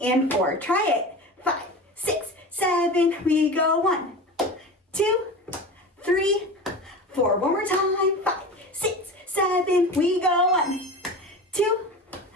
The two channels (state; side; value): normal; both; correlation 0.31